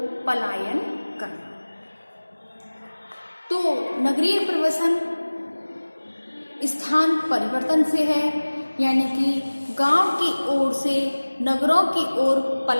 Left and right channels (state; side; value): inverted; both; correlation -1.00